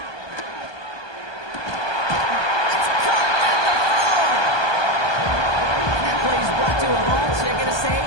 It's caught at the 4. That play is brought to a halt, so they're going to say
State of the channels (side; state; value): right; late; 1.2 ms